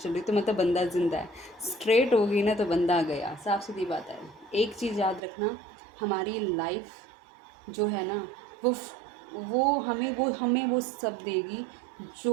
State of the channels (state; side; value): drops out; left; at 5.2 s